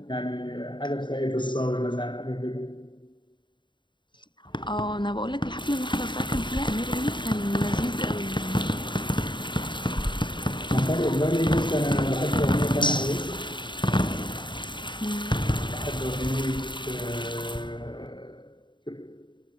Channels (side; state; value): right; late; 0.23 ms